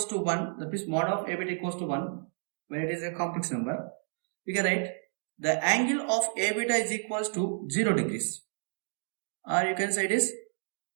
to 1, that is mod of A beta equals to 1 when it is a complex number. We can write the angle of A beta is equals to 0 degrees, or you can say it is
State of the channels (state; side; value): silent; left; 57 dB below the other